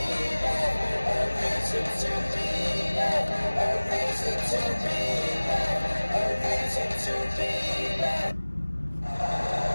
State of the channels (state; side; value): inverted; both; correlation -1.00